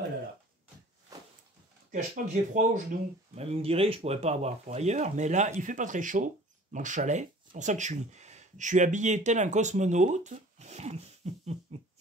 là. Je ne cache pas que j'ai froid aux genoux. Même vous me direz, je ne pourrais pas avoir froid ailleurs, mais là, il ne fait pas très chaud dans le chalet. C'est pour ça que je suis habillé tel un cosmonaute.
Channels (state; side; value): normal; both; correlation 0.47